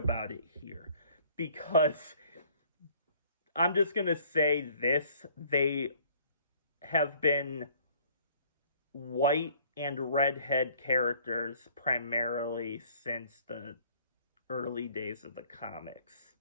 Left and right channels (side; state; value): both; inverted; correlation -0.57